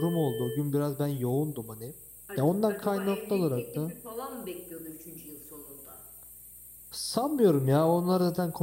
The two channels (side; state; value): left; noise; hum, 30 dB below the sound